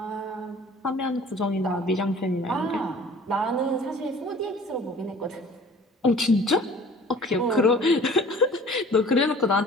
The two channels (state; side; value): normal; both; correlation 0.48